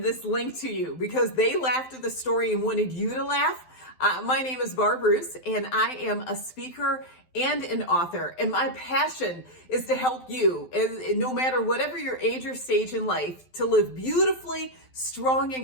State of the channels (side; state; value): right; late; 12 ms